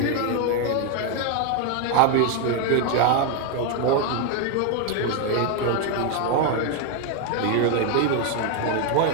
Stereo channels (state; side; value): different; both; correlation 0.01